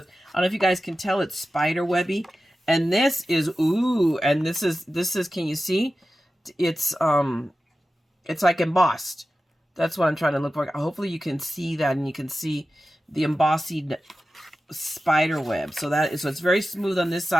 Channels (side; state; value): both; normal; correlation 0.93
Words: know if you guys can tell, it's spider webby. And this is, and this is, can you see? It's like embossed. That's what I'm trying to look for. Hopefully you can see that, and you can see the embossing spider web. So it's very smooth on this